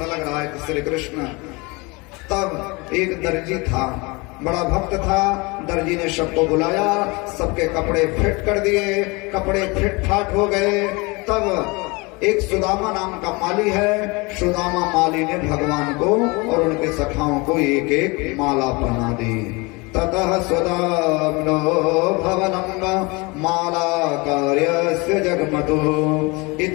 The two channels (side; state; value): right; quieter; 26.4 dB